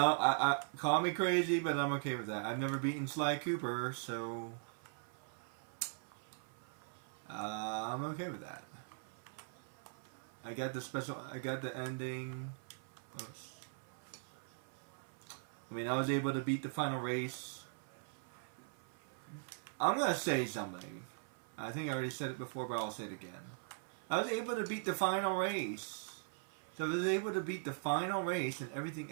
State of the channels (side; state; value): left; silent; 51 dB below the other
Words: call me crazy, but I'm okay with that. I've never beaten Sly Cooper, so I'm okay with that. I got the ending. Oops. I mean, I was able to beat the final race. I'm gonna say something. I think I already said it before, but I'll say it again. I was able to beat the final race. So if I was able to beat the final race, and everything